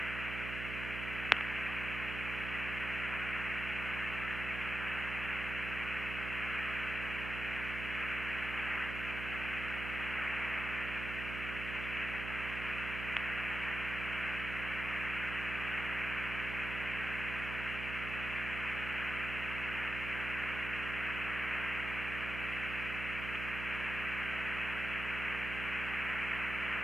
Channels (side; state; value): right; noise; hum, 5 dB below the sound